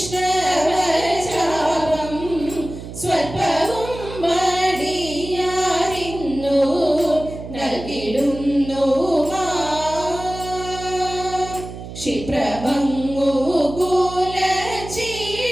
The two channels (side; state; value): right; noise; hum, 11 dB below the sound